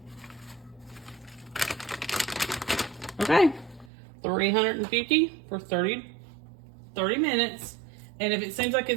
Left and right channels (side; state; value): left; drops out; at 3.9 s